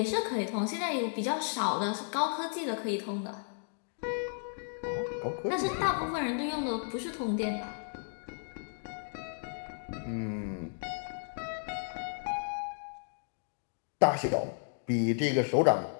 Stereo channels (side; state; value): right; silent; digital silence